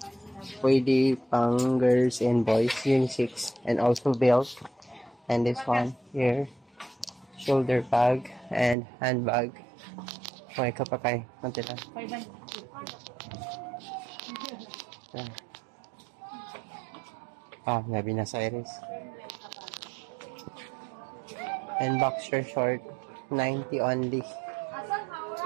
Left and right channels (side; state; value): left; drops out; at 8.8 s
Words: Pwede pang girls and boys, unisex, and also belt. And this one here, shoulder bag and handbag. Okay, kapakay, mantilan. Nabi na sa Iris. And boxer short, 90 only.